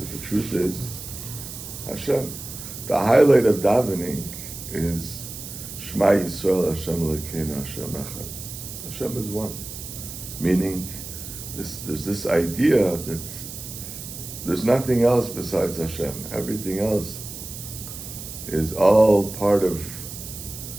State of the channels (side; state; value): right; noise; hiss, 10 dB below the sound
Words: the truth is Hashem. The highlight of davening is Shema Yisrael Hashem Elokeinu Hashem Echad. Hashem is one. Meaning, there's this idea that there's nothing else besides Hashem. Everything else is all part of